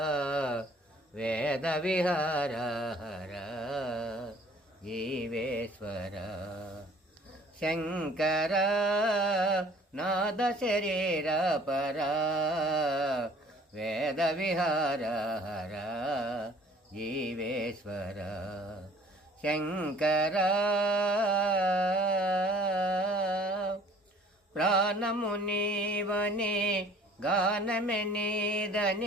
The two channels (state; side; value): normal; both; correlation 0.53